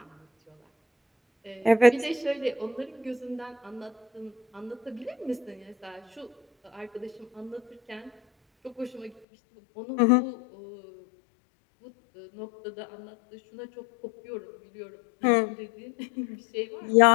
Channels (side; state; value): right; drops out; at 9.2 s